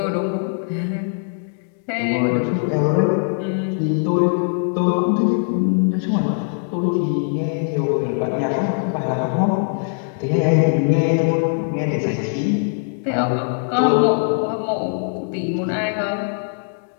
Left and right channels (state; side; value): silent; right; 65 dB below the other